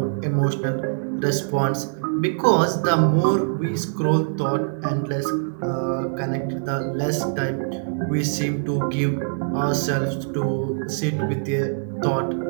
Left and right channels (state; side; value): silent; left; digital silence